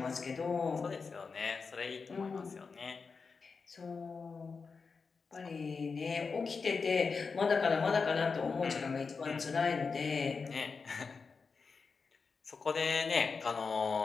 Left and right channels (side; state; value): right; quieter; 4.9 dB